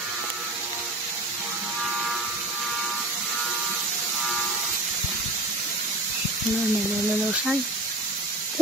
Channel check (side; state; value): both; normal; correlation 0.34